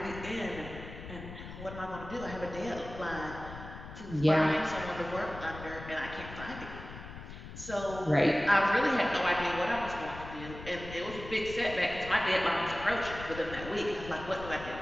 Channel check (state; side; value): noise; left; rumble, 12 dB below the sound